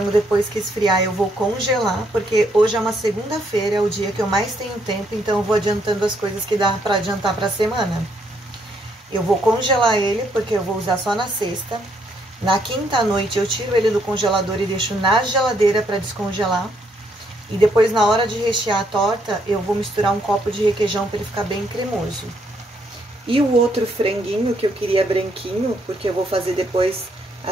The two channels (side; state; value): both; normal; correlation 0.72